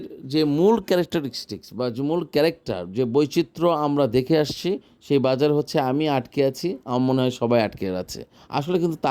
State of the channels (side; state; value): both; identical; correlation 1.00